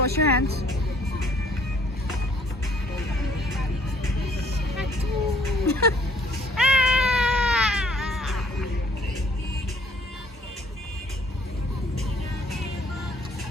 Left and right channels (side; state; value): both; normal; correlation 0.61